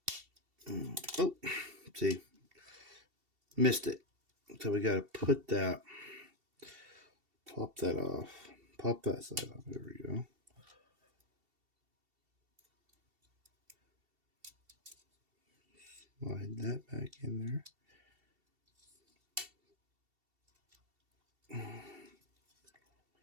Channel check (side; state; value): left; late; 2.7 ms